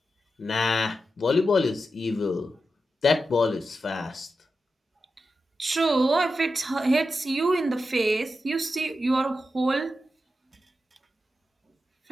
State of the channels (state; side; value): normal; both; correlation 0.90